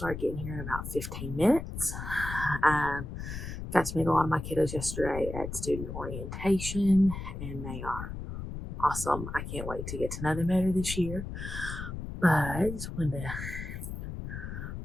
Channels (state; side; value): noise; left; rumble, 7 dB below the sound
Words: getting here in about 15 minutes. Got to meet a lot of my kiddos yesterday at student orientation, and they are awesome. I can't wait to get to know them better this year. But I just wanted to